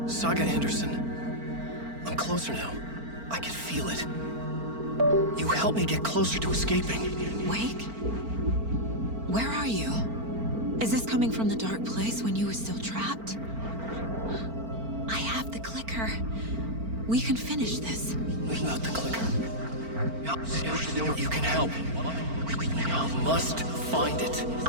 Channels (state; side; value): late; left; 4.4 ms